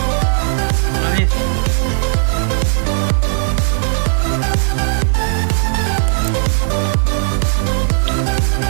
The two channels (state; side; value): silent; left; digital silence